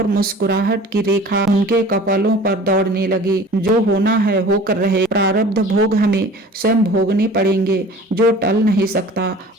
मुस्कुराहट की रेखा उनके कपालों पर दौड़ने लगी। जो होना है होकर रहे, प्रारब्ध भोग हमें स्वयं भोगने पड़ेंगे। जो टल नहीं सकता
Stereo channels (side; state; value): both; normal; correlation 0.44